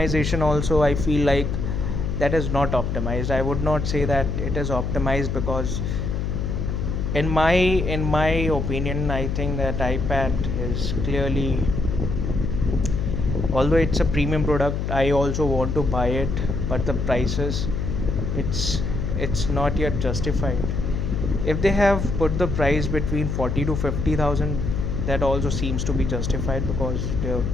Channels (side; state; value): left; noise; hum, 1 dB below the sound